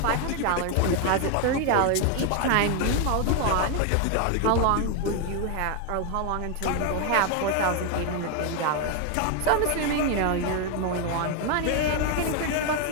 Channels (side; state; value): both; different; correlation 0.01